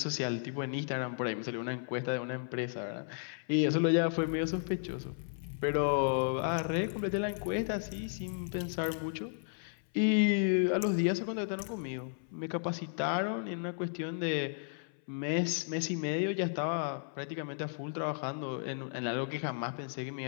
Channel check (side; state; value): right; silent; 55 dB below the other